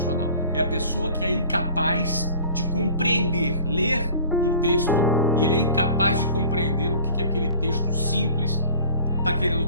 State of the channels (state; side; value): inverted; both; correlation -0.46